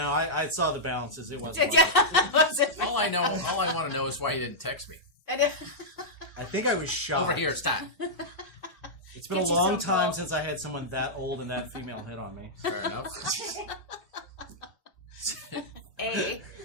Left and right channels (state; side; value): late; right; 1.0 ms